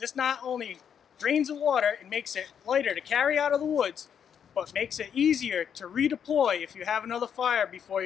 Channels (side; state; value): right; quieter; 8.1 dB